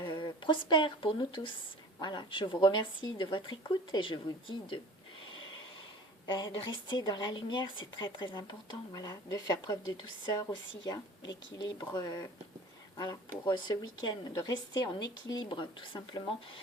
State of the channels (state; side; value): normal; both; correlation 0.43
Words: prospère pour nous tous. Voilà, je vous remercie de votre écoute et je vous dis de rester dans la lumière, c'est très très important, voilà, de faire preuve de douceur aussi, hein, l'équilibre, voilà, pour ce week-end, de rester en équilibre tout simplement